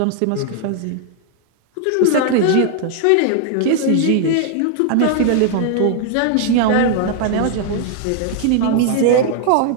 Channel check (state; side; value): different; both; correlation 0.00